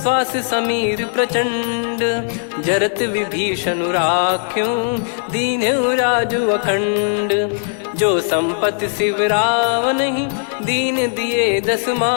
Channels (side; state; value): right; silent; digital silence